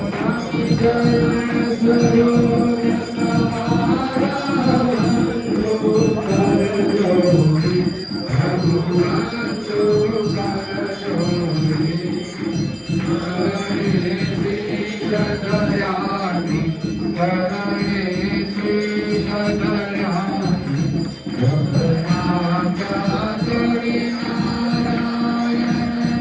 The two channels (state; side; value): identical; both; correlation 1.00